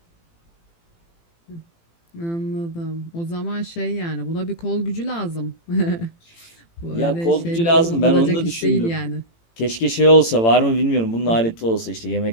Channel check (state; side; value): late; right; 18 ms